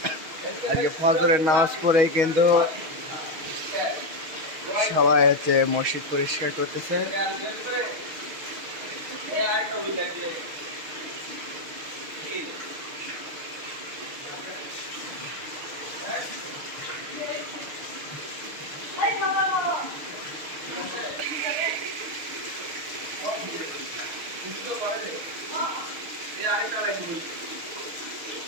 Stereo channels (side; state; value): left; late; 6.5 ms